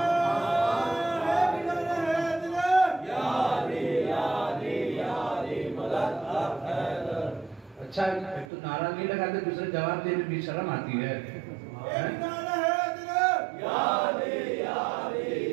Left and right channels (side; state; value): left; drops out; at 8.5 s